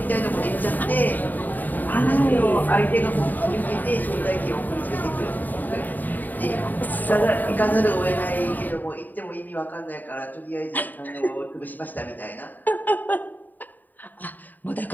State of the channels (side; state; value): right; late; 0.086 ms